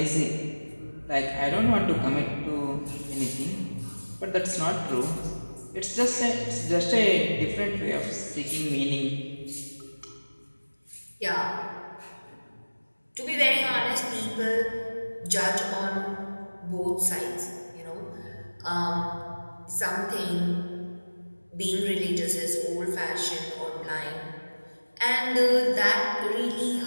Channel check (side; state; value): both; inverted; correlation -1.00